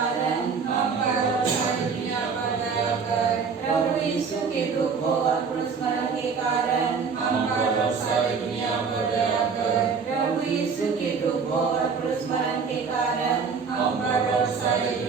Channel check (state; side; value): quieter; left; 5.6 dB